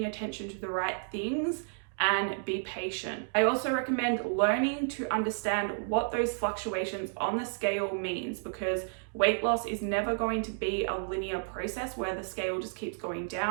attention to the right things, and be patient. I also recommend learning to understand what those fluctuations on the scale means, because weight loss is never going to be a linear process where the scale just keeps going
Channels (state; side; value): silent; left; digital silence